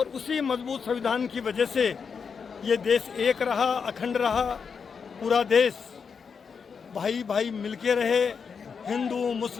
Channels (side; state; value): right; quieter; 6.0 dB